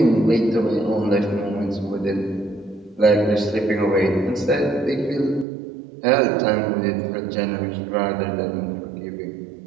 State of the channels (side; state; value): left; drops out; at 5.5 s